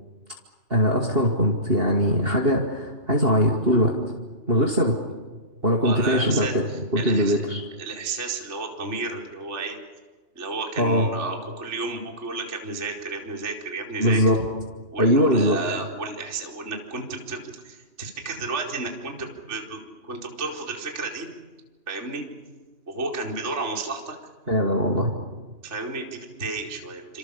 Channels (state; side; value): late; left; 2.8 ms